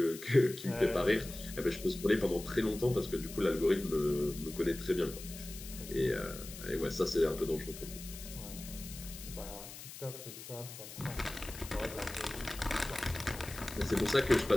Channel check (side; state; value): left; noise; hiss, 13 dB below the sound